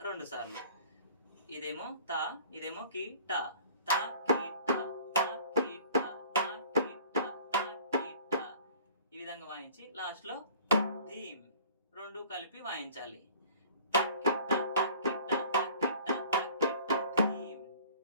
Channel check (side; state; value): both; inverted; correlation -0.48